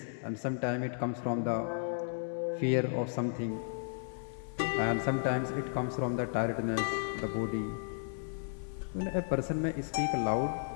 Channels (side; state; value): right; silent; 55 dB below the other